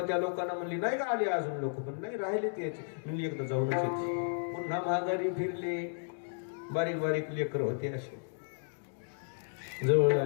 त्या लोकांना म्हणली नाही का आली अजून लोक, पण नाही राहिले ते याची. म्हणली एकदा जाऊनच येते. पुन्हा महागारी फिरले. बारीक बारीक लेकर होते असे. जवळ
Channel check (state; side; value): silent; right; digital silence